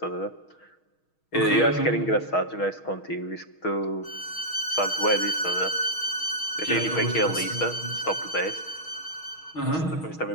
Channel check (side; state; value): right; late; 6.3 ms